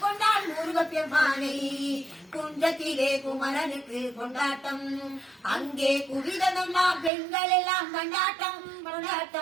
கொண்டாள் முருகப்பெருமானை. குன்றத்திலே குமரனுக்கு கொண்டாட்டம், அங்கே குவிதனம்மா பெண்கள் எல்லாம் கொண்டாட்டம்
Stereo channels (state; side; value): drops out; left; at 7.1 s